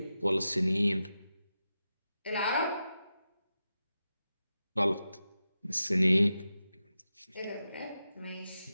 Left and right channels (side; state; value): both; inverted; correlation -0.90